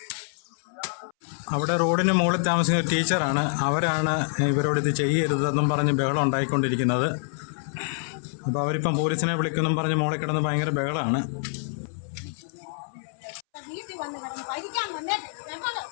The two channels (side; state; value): right; silent; 61 dB below the other